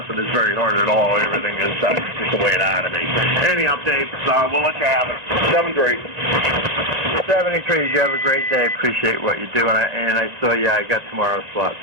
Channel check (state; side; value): late; left; 1.9 ms